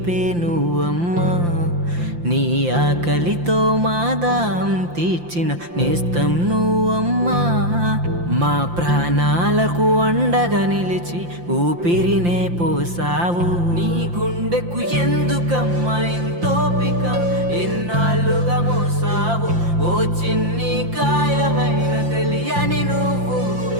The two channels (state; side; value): late; left; 5.8 ms